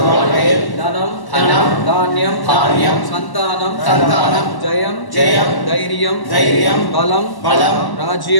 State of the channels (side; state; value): right; late; 1.0 ms